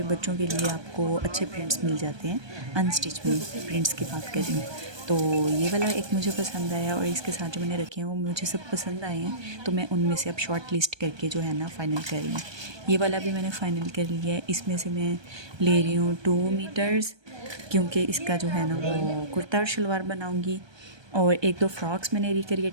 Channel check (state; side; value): late; left; 1.2 ms